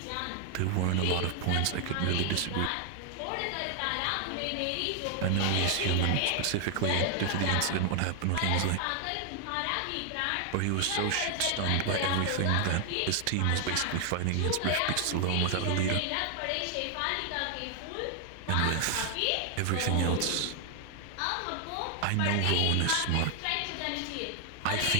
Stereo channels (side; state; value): both; different; correlation 0.00